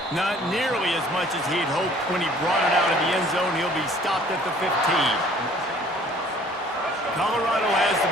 Not nearly as much as he'd hoped when he brought it out of the end zone. He'll be stopped at the 15. Colorado has the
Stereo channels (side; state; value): both; normal; correlation 0.54